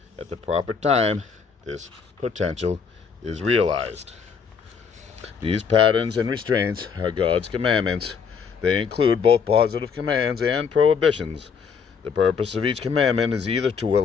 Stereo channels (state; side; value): quieter; right; 6.1 dB